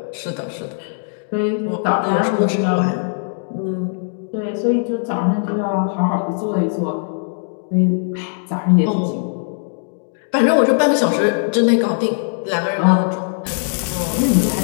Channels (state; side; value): silent; right; digital silence